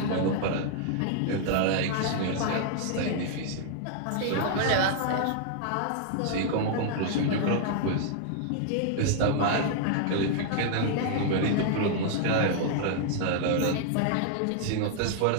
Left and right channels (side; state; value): both; different; correlation -0.01